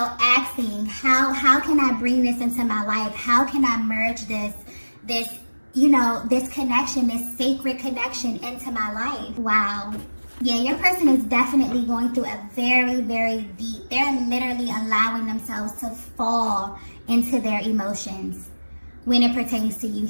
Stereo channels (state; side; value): inverted; both; correlation -1.00